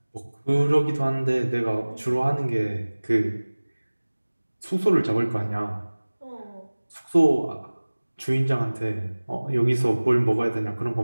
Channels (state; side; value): inverted; both; correlation -1.00